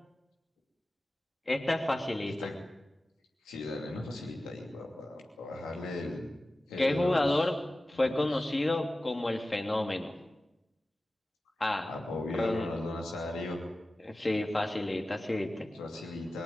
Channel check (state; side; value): normal; both; correlation 0.95